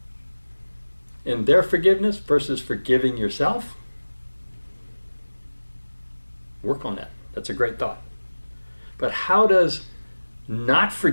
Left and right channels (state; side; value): inverted; both; correlation -1.00